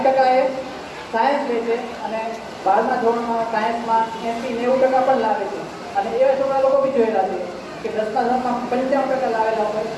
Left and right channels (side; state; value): both; identical; correlation 1.00